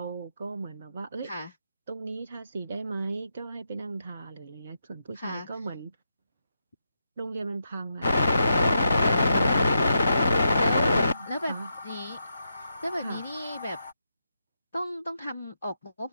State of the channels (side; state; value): both; inverted; correlation -0.84